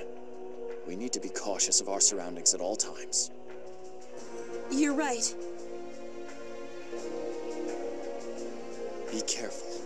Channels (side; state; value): both; identical; correlation 1.00